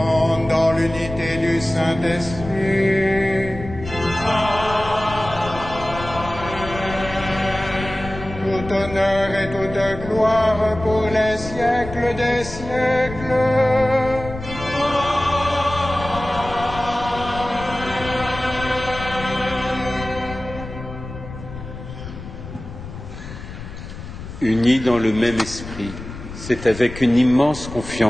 dans l'unité du Saint-Esprit. Tout honneur et toute gloire pour les siècles des siècles. Unis dans le même esprit, c'est avec une immense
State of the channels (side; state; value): left; noise; rumble, 11 dB below the sound